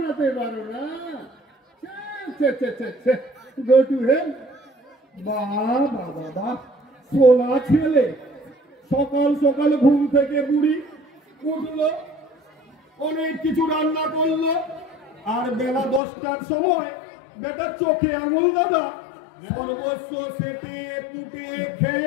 পারো না? Go to hell. বাবা দাদা, সোনা ছেলে সকাল সকাল ঘুম থেকে বুড়ি উঠলো, অনেক কিছু রান্না করলো, আর বেলা 10টার সময় বেটা চোখে আঙুল দাদা সর্বস্ব সেটিয়ে কুটিয়ে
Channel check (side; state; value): right; drops out; at 16.0 s